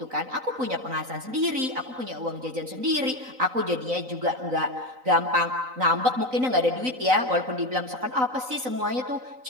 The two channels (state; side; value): late; left; 3.9 ms